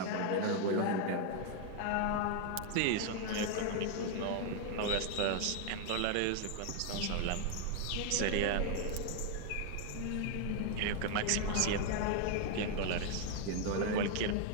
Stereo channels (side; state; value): both; different; correlation 0.01